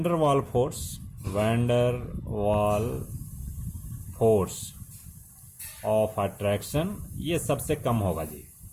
वाल फोर्स ऑफ अट्रैक्शन ये सबसे कम होगा जी।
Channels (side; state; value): both; identical; correlation 1.00